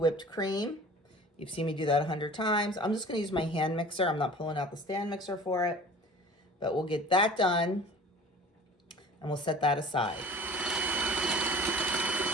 cream. You've seen me do that 100 times. I'm just going to use my hand mixer. I'm not pulling out the stand mixer for it. But we'll get that done and we'll set that aside.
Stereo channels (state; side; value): normal; both; correlation 0.43